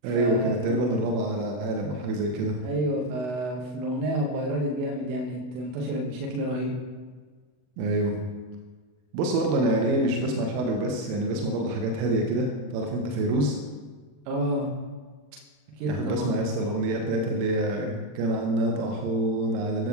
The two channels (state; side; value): late; left; 40 ms